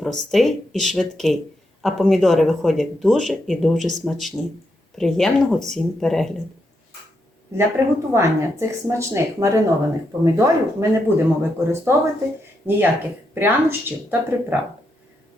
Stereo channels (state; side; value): normal; both; correlation 0.82